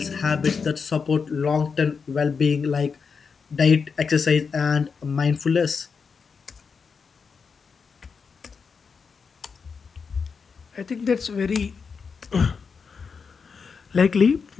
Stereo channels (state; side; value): quieter; right; 5.5 dB